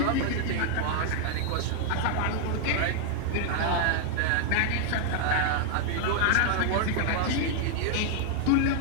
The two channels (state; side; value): different; both; correlation 0.00